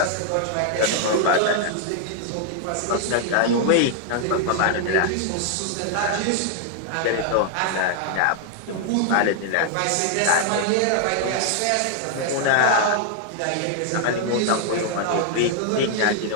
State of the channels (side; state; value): both; different; correlation 0.00